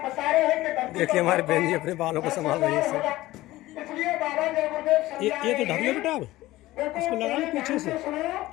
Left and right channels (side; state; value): right; quieter; 17.3 dB